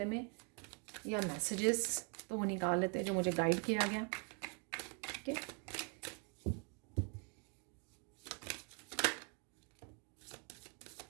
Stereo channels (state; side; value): quieter; left; 36.6 dB